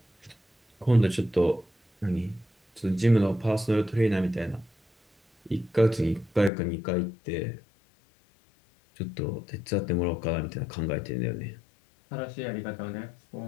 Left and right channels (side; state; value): right; drops out; at 6.5 s